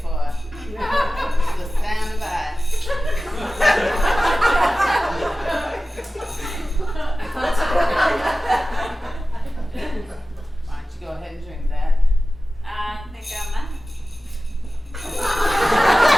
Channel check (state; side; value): normal; both; correlation 0.96